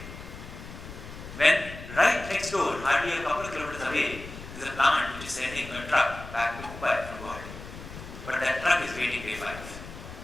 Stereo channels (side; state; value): left; noise; rumble, 13 dB below the sound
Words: When right next door, hardly a couple of kilometers away, is a plant which is sending a truck back to Mumbai from Guwahati. But that truck is waiting day 5.